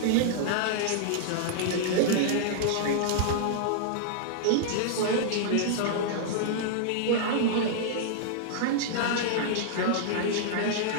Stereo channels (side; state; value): both; different; correlation -0.01